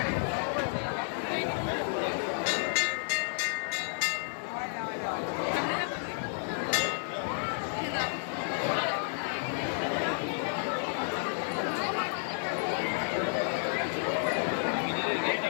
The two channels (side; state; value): right; silent; 57 dB below the other